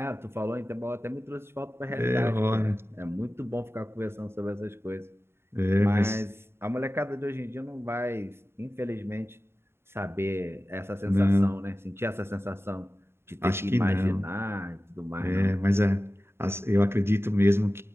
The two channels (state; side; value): late; left; 0.12 ms